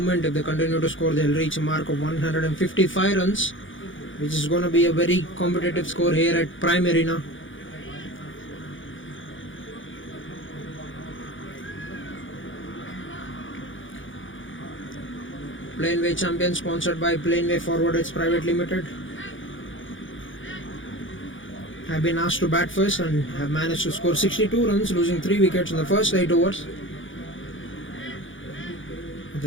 If they continue to score, they'll reach a mark of 155 runs, which is going to be a very competitive score here at Prime Arena. Planway champion, sponsored by Planway Forwarders Private Limited, have been asked to bat first and have managed to score 62 runs, losing 3 wickets in the first 8 overs.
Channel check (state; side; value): late; right; 0.57 ms